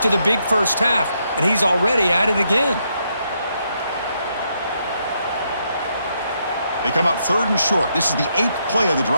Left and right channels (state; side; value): inverted; both; correlation -0.78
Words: the big first half, and he's already at it again. They come up 3rd and short. This is the 8th play of the